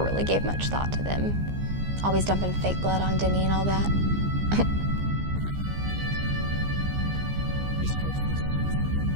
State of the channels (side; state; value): left; late; 15 ms